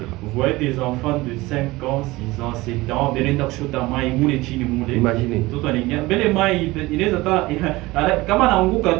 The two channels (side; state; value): left; quieter; 20.3 dB